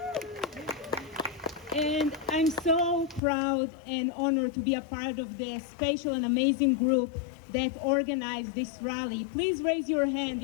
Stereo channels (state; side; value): drops out; right; at 3.2 s